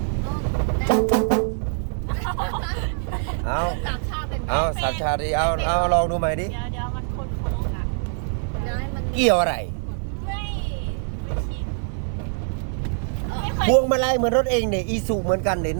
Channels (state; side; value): silent; left; digital silence